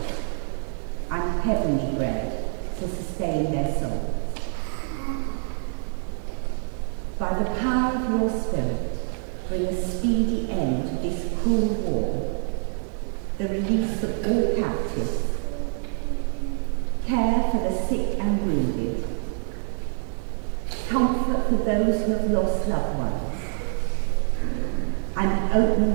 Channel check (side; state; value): left; silent; 61 dB below the other